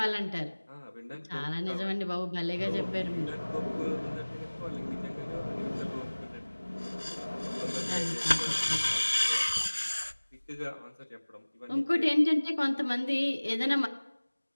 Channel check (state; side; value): inverted; both; correlation -1.00